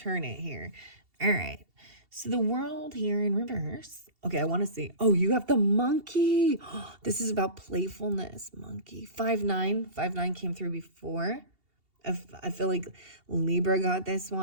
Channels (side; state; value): left; late; 2.7 ms